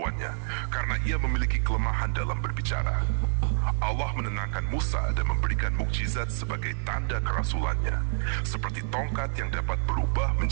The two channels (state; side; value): silent; left; 60 dB below the other